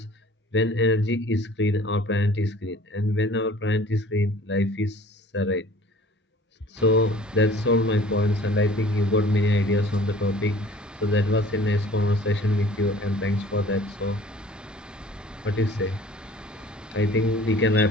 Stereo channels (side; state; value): both; normal; correlation 0.49